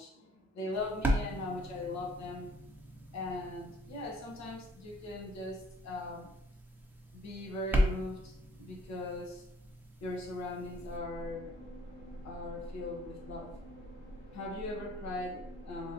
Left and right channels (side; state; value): both; normal; correlation 0.62